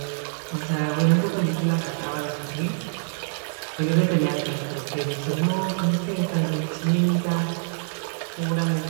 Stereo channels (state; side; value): silent; left; digital silence